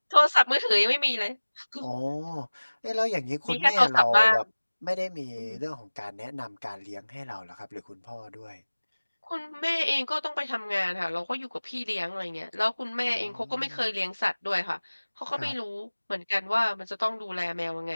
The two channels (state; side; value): inverted; both; correlation -1.00